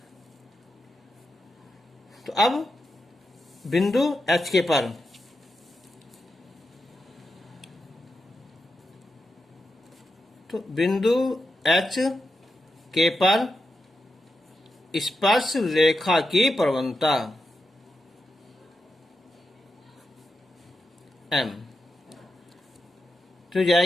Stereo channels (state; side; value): normal; both; correlation 0.87